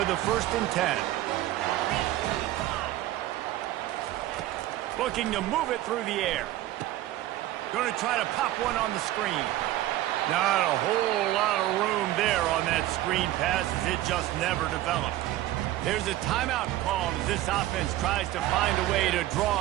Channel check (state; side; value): quieter; left; 14.9 dB